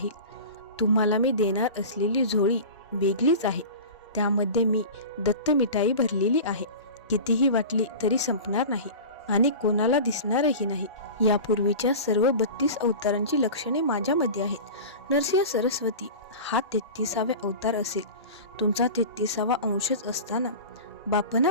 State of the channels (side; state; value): both; inverted; correlation -0.33